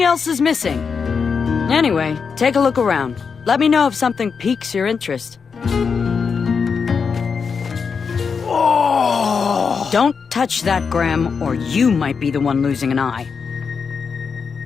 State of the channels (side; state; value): right; quieter; 5.7 dB